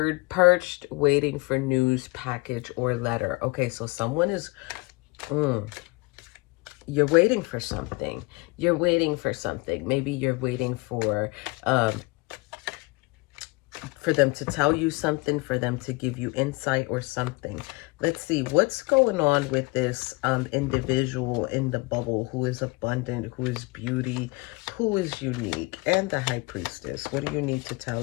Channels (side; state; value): right; quieter; 25.5 dB